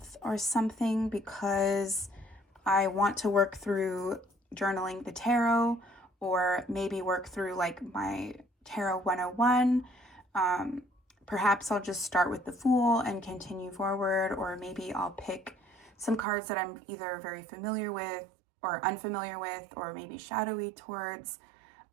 or something, because I want to work through journaling the tarot, or maybe work through like my tarot 101. Perhaps I'll just start with the Fool and continue forward, or maybe I'll pick some cards that I'm either very familiar with or unfamiliar with, or maybe shadowy towards,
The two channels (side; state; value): left; drops out; at 16.2 s